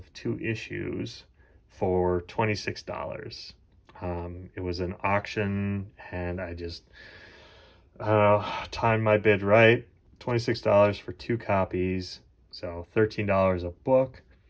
2 issues for $26. It was an auction, and I don't know, timed my bid right. $26 for 2 copies, so $13 a book.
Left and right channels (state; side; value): identical; both; correlation 1.00